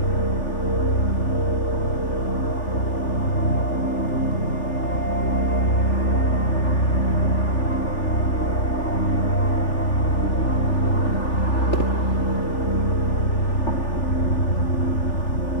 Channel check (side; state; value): right; late; 3.4 ms